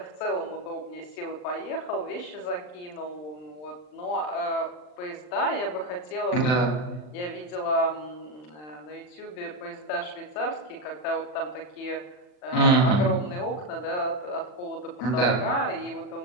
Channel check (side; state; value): right; late; 39 ms